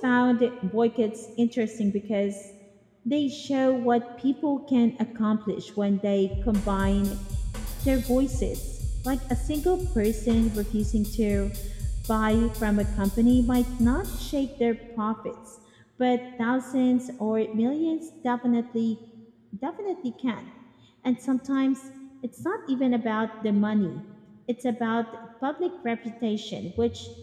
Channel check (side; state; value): both; identical; correlation 1.00